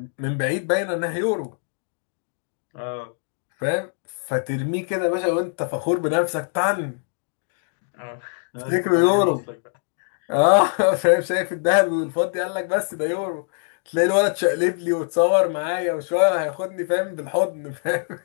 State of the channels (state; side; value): silent; right; digital silence